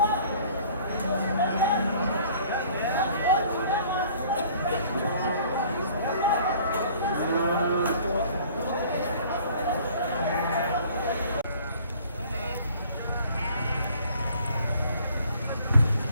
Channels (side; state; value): both; inverted; correlation -0.54